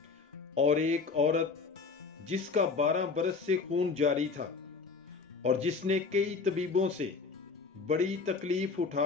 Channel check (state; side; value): quieter; right; 4.6 dB